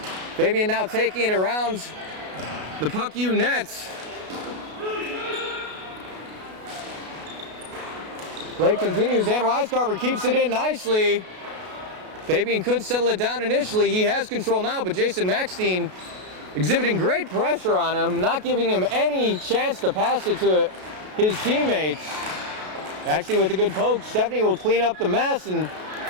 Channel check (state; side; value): late; left; 33 ms